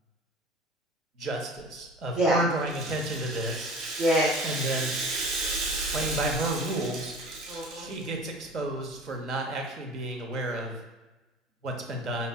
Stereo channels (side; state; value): both; normal; correlation 0.40